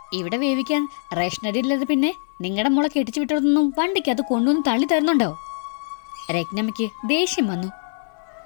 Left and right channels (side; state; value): right; silent; 64 dB below the other